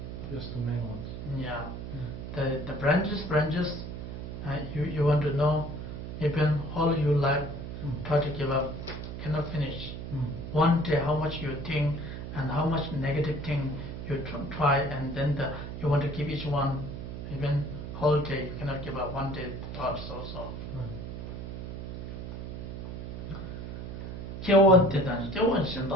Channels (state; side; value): noise; right; hum, 7 dB below the sound